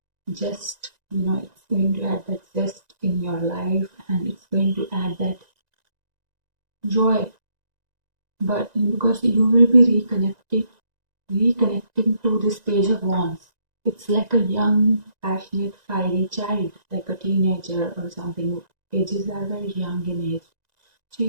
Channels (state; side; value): late; left; 1.9 ms